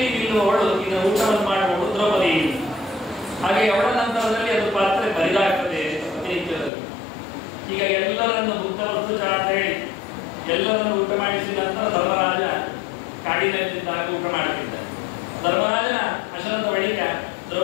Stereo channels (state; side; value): drops out; right; at 6.7 s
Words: ನಿಲ್ಲುವವಳು ಇದರ ಊಟವನ್ನು ಮಾಡುವವಳು ದ್ರೌಪದಿ. ಹಾಗೆ ಅವಳ ನಂತರದಲ್ಲಿ ಅದು ಪಾತ್ರೆ ಬರಿದಾಗ್ತದೆ ಪ್ರತಿನಿತ್ಯದಲ್ಲಿ. ಈಗ ಎಲ್ಲರನ್ನು ಭುಕ್ತವಸ್ತು ಅಂತ ಹೇಳಿ ಎಲ್ಲರನ್ನು ಊಟ ಮಾಡಿಸಿದ ನಂತರ ಧರ್ಮರಾಜ ಕಾಡಿನಲ್ಲಿದ್ದಾಗ ಊಟ ಮಾಡುತ್ತಿದ್ದ. ಧರ್ಮರಾಜನ ಅಶನದ ಬಳಿಕ